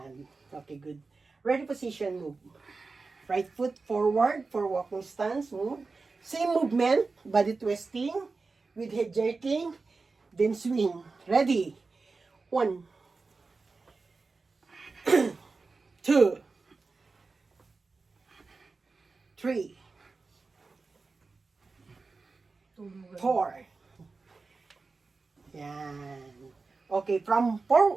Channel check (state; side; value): quieter; left; 4.1 dB